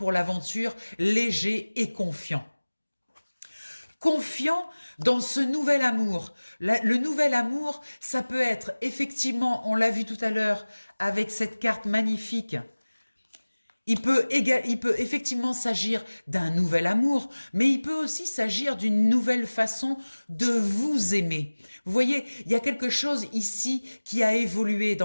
l'aventure léger et confiant. Confiant dans ce nouvel amour. Le nouvel amour, ça peut être effectivement, on l'a vu tout à l'heure avec cette carte magnifique, il peut effectivement s'agir d'un nouvel amour, mais il peut aussi s'agir d'une nouvelle façon de vous aimer. Vous voyez, il y a quelque chose ici qui a évolué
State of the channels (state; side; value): inverted; both; correlation -1.00